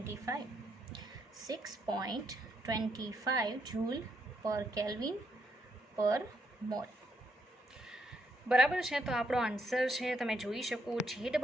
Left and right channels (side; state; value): both; normal; correlation 0.75